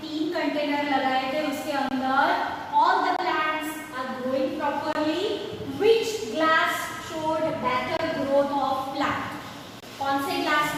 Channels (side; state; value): both; identical; correlation 1.00